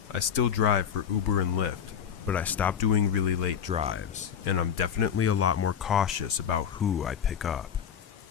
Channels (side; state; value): right; quieter; 8.3 dB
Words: I still drive for Uber and Lyft, but I stopped doing really late drives, and I'm definitely a lot more cautious about who I pick up.